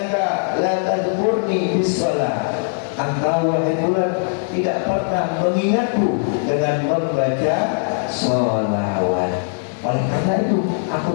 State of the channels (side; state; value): right; silent; digital silence